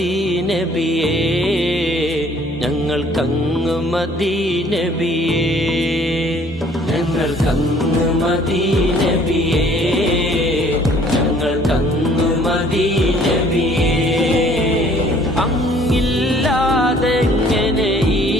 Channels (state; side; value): normal; both; correlation 0.57